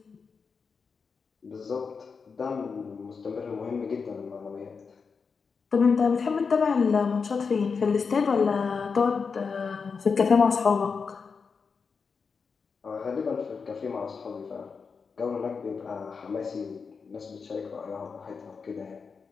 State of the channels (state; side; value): quieter; right; 5.3 dB